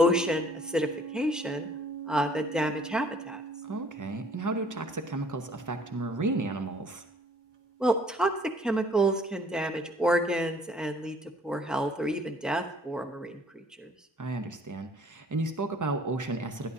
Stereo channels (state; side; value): normal; both; correlation 0.57